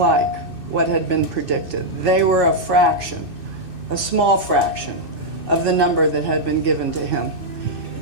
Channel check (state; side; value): late; left; 2.6 ms